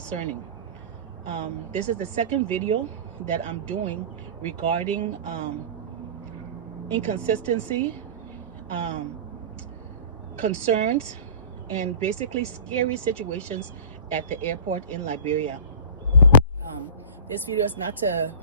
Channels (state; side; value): inverted; both; correlation -0.37